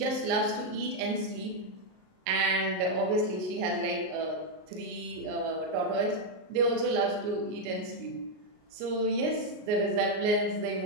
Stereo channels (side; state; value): left; late; 38 ms